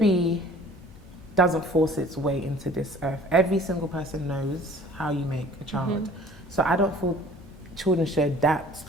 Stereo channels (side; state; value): both; normal; correlation 0.50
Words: doesn't force its way into this earth. Every single person knows how you make a child. So I don't feel children should adapt